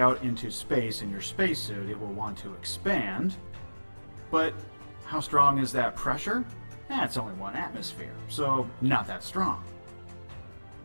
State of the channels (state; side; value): inverted; both; correlation -1.00